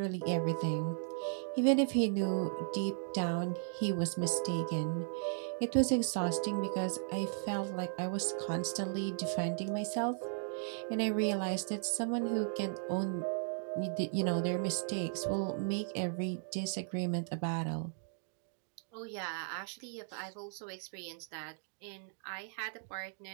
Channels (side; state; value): left; silent; digital silence